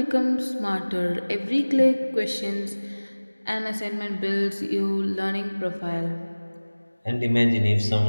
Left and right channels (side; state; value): both; inverted; correlation -1.00